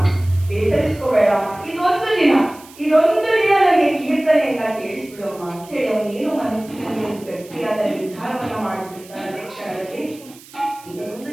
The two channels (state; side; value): noise; right; hiss, 22 dB below the sound